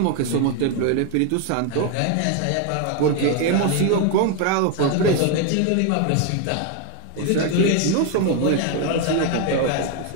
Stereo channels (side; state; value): both; different; correlation 0.01